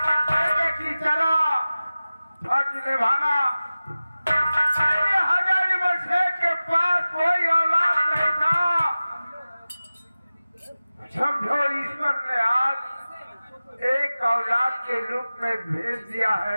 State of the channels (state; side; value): inverted; both; correlation -0.96